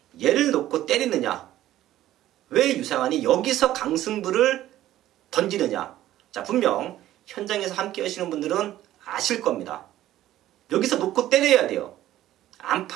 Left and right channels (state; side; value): quieter; left; 13.7 dB